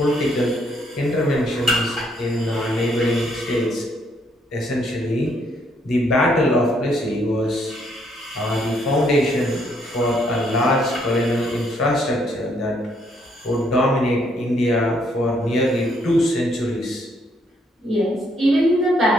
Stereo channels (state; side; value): normal; both; correlation 0.70